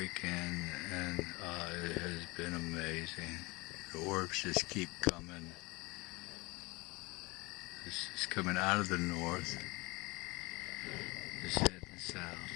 and it has been amazing. The orbs just keep coming. This is coming out of the north. It's heading south.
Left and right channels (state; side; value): quieter; right; 24.6 dB